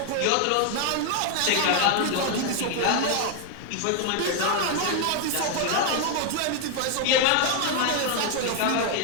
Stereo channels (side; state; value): both; different; correlation 0.00